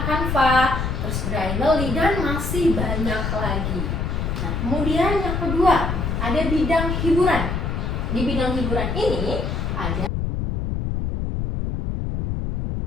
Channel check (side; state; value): left; noise; rumble, 1 dB below the sound